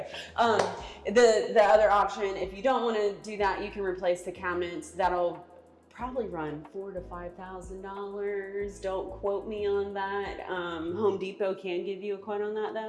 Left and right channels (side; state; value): both; identical; correlation 1.00